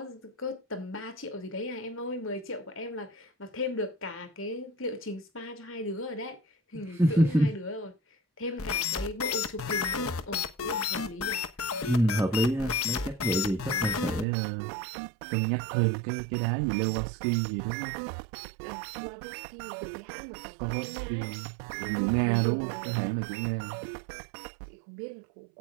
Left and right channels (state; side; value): drops out; left; at 14.2 s